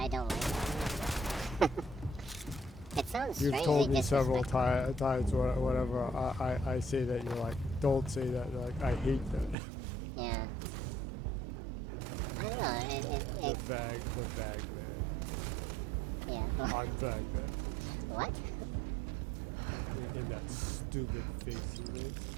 don't like that. It sounds You've strangely told me several disrespectful. times or whatever. I say that, you're like, don't say that. You're like, I hate that. Yeah. I don't know. the vag man. Yeah. I'm vag man. What? In that stupid face he makes.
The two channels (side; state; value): left; drops out; at 9.6 s